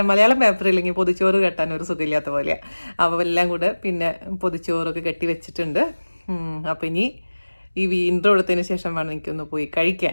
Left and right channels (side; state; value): both; inverted; correlation -1.00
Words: മലയാളം പേപ്പർ ഇല്ലെങ്കിൽ പൊതിച്ചോറ് കെട്ടാൻ ഒരു സുഖമില്ലാത്ത പോലെയാണ്. അപ്പോൾ എല്ലാം കൂടെ പിന്നെ പൊതിച്ചോറൊക്കെ കെട്ടി വെച്ചിട്ടുണ്ട്. അപ്പോൾ ഇനി ഈ ഇൻട്രോ എടുത്തതിന് ശേഷം വേണം എനിക്കൊന്ന് പോയി